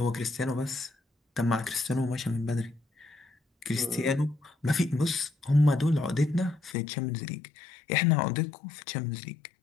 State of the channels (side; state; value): right; drops out; at 6.8 s